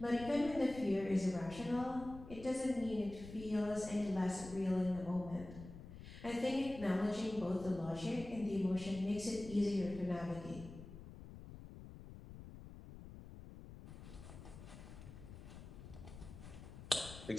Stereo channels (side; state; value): left; noise; rumble, 13 dB below the sound